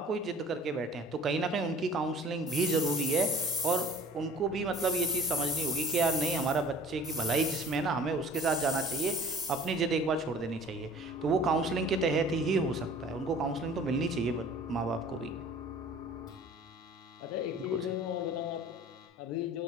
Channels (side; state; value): both; normal; correlation 0.47